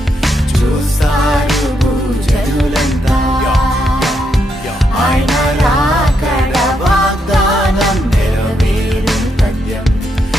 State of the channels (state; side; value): normal; both; correlation 0.80